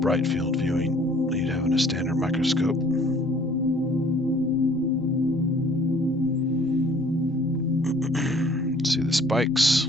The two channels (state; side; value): normal; both; correlation 0.55